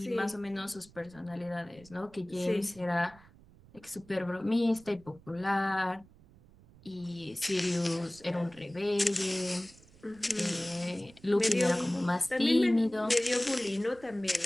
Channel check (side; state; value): right; noise; rumble, 25 dB below the sound